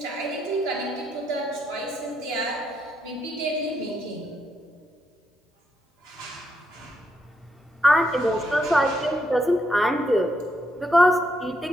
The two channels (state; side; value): normal; both; correlation 0.78